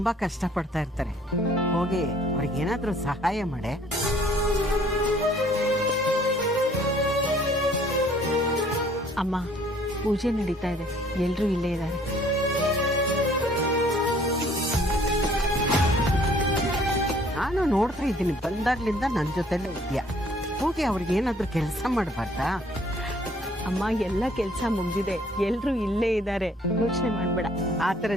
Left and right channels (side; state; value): both; normal; correlation 0.59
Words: ಕಷ್ಟಪಡ್ತಾ ಇರ್ತಾರೆ. ಹೋಗಿ ಅವ್ರಿಗೇನಾದರೂ ಸಹಾಯ ಮಾಡೆ. ಅಮ್ಮ, ಪೂಜೆ ನಡೀತಾ ಇದೆ, ಎಲ್ಲರೂ ಇಲ್ಲೇ ಇದ್ದಾರೆ. ನಾನು ನೋಡ್ತಾ ಇದ್ದೀನಿ, ಬಂದಾಗ್ಲಿಂದ ನನ್ನ ಜೊತೆಲೇ ಇದೆಯಾ. ಹೋಗಿ ಅವ್ರಿಗೇನಾದರೂ ಕೆಲಸ ಮಾಡಬಾರ್ದಾ? ಅಮ್ಮ, ಎಲ್ಲ ಕೆಲಸ ಮುಗ್ದಿದೆ, ಎಲ್ಲರೂ ಇಲ್ಲೇ ಇದ್ದಾರೆ, ಯೋಚನೆ ಮಾಡ್ಬೇಡ. ಆ